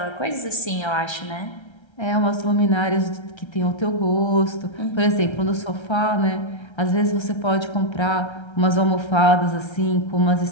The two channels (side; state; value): right; late; 1.3 ms